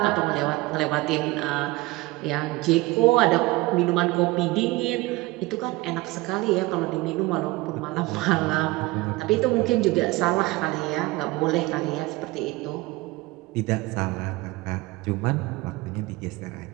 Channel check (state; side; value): quieter; left; 20.8 dB